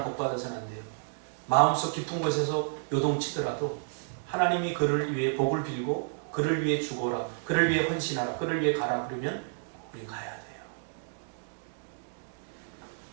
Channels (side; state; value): left; silent; digital silence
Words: 복받아서는 안 돼요. 마음속 깊은 곳에서 요동치더라도 하나님이 그를 위해 복을 빌고 그를 위해 죽어라, 그를 위해 헌신하라, 그를 위해 가라 그러면 우리 가야 돼요.